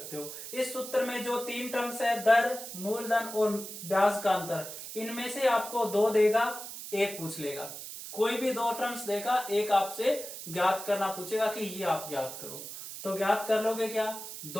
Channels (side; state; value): right; noise; hiss, 10 dB below the sound